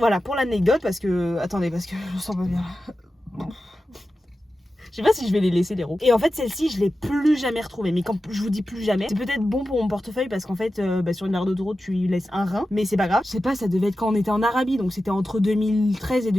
pour l'anecdote, parce que... Attendez, parce que je me sens pas bien. Je sais pas si je vais les laisser les roues. Et en fait celle-ci je l'ai plus jamais retrouvée. Mais quand je vous dis plus jamais, c'est peut-être bon pour mon portefeuille parce qu'en fait sur une aire d'autoroute tu lui laisses un rein. Mais c'est pas grave. Je sais pas, ça devait être quand on était en Arabie. Donc c'était entre 2013 et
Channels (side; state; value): both; normal; correlation 0.92